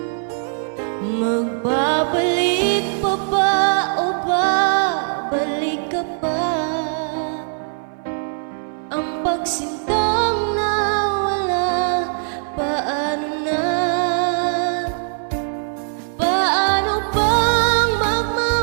Magbabalik pa ba o babalik ka pa? Ang pagsintang nawala, paano na? Paano bang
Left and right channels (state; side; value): silent; left; 60 dB below the other